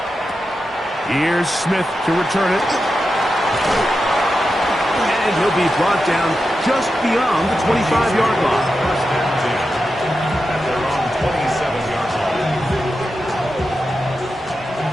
Here's Smith to return it. And he'll be brought down just beyond the 25-yard line. At their own 27-yard line.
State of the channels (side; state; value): both; normal; correlation 0.89